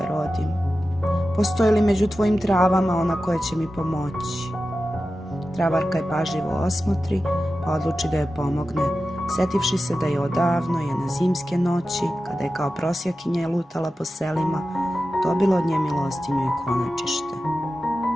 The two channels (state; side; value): normal; both; correlation 0.93